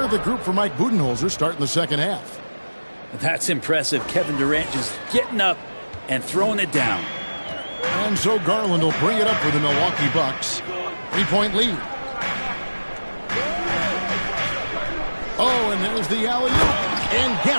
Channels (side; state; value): both; inverted; correlation -1.00